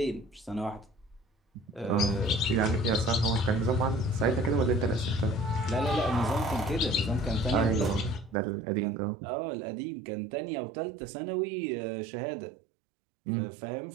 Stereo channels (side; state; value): left; drops out; at 8.3 s